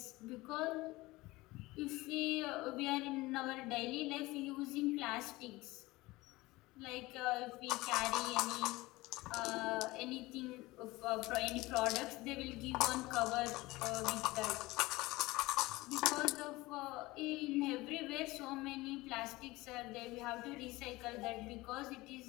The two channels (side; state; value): right; quieter; 20.3 dB